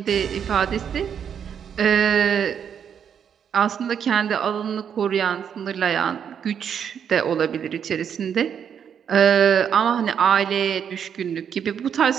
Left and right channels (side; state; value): left; quieter; 8.0 dB